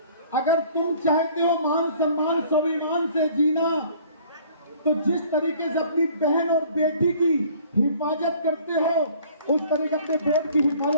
अगर तुम चाहते हो मान सम्मान स्वाभिमान से जीना, तो जिस तरीके से अपनी बहन और बेटी की हिफाजत करते हो, उस तरीके अपने वोट की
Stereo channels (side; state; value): both; inverted; correlation -0.53